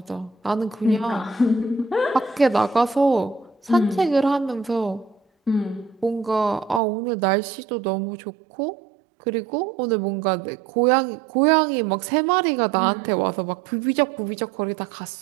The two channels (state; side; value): drops out; left; at 6.8 s